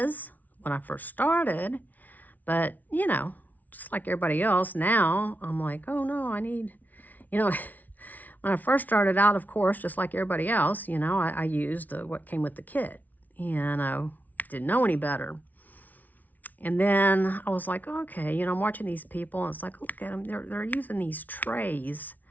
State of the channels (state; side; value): late; right; 0.078 ms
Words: when I first started, but, you know, just like everybody else, now I'm like, oh, no, I need, you know, when I first started out, of course, just like everybody else, you know, I used what came with the kit, and I didn't know any better. And then I was like, okay, you know, I'm watching these people, and it's like, look at them, they're using these trays.